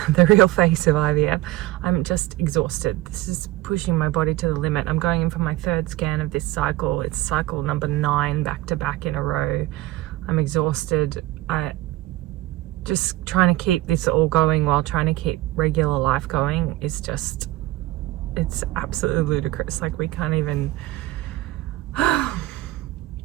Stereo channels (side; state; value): left; quieter; 17.2 dB